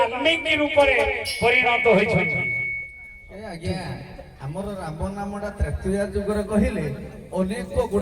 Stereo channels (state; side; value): identical; both; correlation 1.00